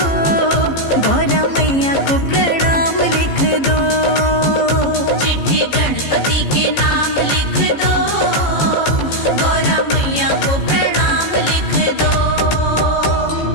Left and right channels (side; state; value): right; late; 15 ms